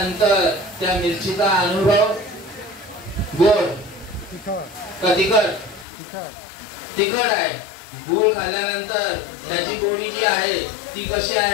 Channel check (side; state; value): right; drops out; at 5.9 s